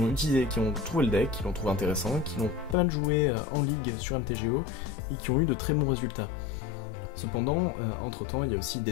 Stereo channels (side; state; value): right; drops out; at 2.8 s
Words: trouvé le deck, qui l'ont trouvé intéressant, qui l'ont pas mal joué en ligue sur MTGO, et qui ont eu de très bons résultats. Cependant, entre temps, il y a aussi